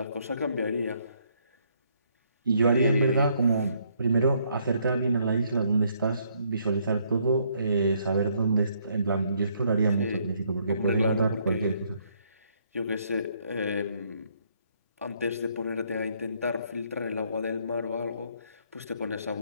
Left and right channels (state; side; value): inverted; both; correlation -0.69